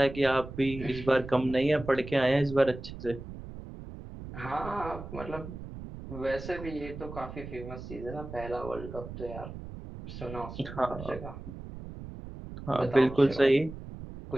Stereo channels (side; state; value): right; noise; rumble, 11 dB below the sound